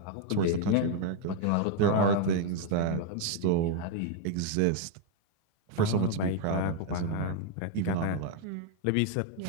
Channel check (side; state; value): both; different; correlation 0.01